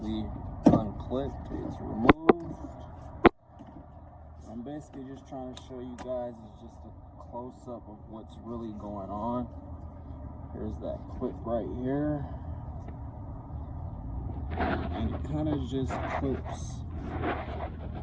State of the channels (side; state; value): both; identical; correlation 1.00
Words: unclipped. It's removed. I'm basically just trying to show you guys is just a close-up of what's really going on. Here's that clip right here, and it kind of just clips